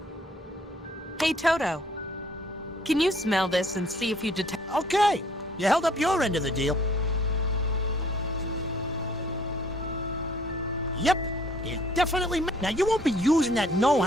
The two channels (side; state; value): both; normal; correlation 0.58